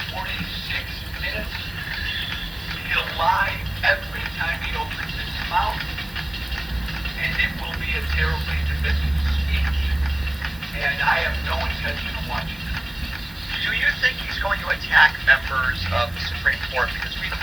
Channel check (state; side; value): noise; left; hiss, 24 dB below the sound